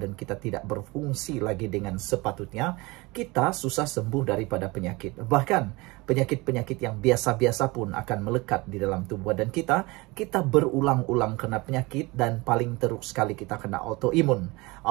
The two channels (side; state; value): left; quieter; 23.8 dB